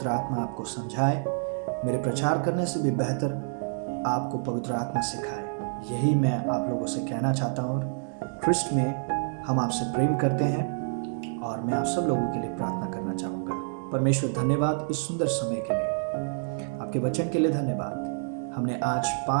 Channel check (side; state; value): left; silent; digital silence